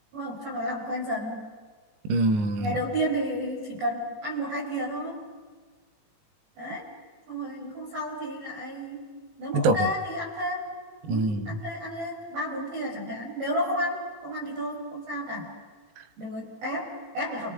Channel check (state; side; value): late; left; 19 ms